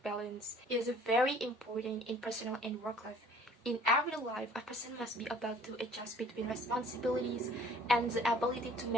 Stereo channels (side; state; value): both; normal; correlation 0.54